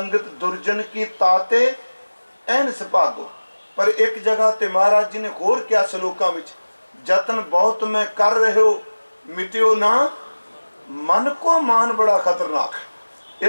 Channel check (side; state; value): both; inverted; correlation -1.00